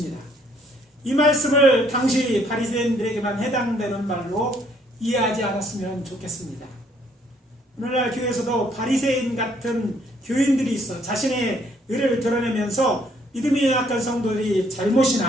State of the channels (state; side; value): normal; both; correlation 0.66